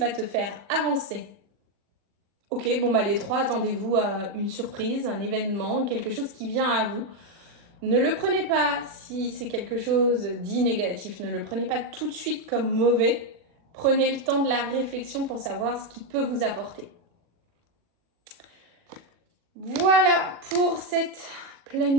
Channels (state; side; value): late; left; 40 ms